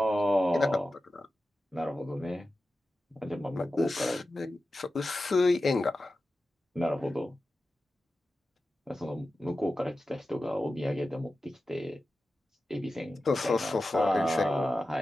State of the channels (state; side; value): normal; both; correlation 0.93